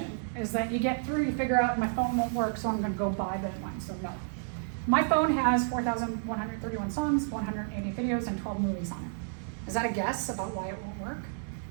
is that you get through, you figure out my phone won't work, so I'm gonna go buy that one, so no. My phone has 4,131 songs, 180 videos, and 12 movies on it. Is that a guess about why it won't work?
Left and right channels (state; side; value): silent; left; 57 dB below the other